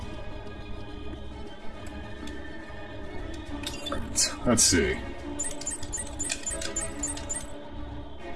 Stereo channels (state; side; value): identical; both; correlation 1.00